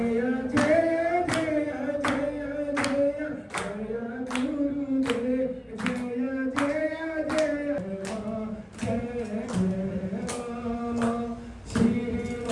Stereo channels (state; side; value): identical; both; correlation 1.00